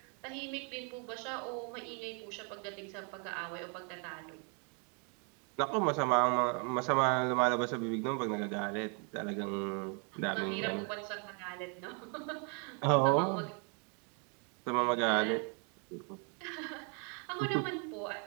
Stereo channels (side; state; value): left; quieter; 37.8 dB